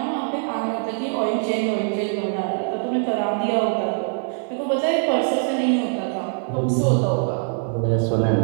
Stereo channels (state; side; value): silent; left; 58 dB below the other